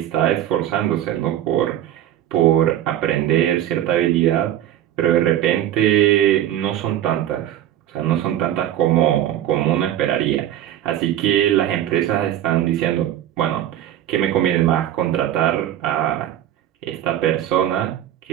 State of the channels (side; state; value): left; quieter; 11.9 dB